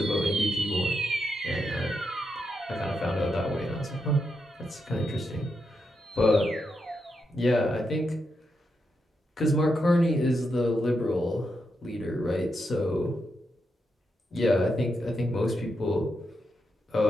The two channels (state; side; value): normal; both; correlation 0.84